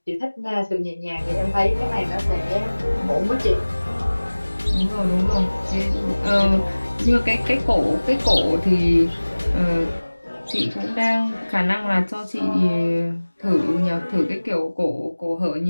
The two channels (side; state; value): both; inverted; correlation -1.00